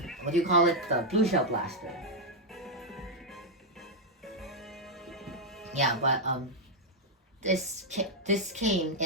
what do you call it? The blue shell blaster. Yeah, but this came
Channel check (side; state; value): both; normal; correlation -0.02